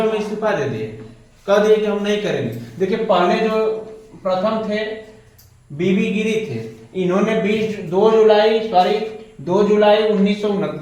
इस्तीफा दे दिए, कह दिए कि हम नहीं करेंगे। देखिए, पहले जो प्रथम थे बीबी गिरी थे, इन्होंने 2 जुलाई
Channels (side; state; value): both; identical; correlation 1.00